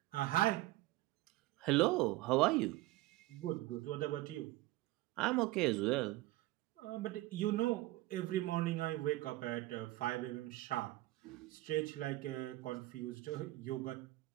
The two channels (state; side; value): quieter; left; 18.2 dB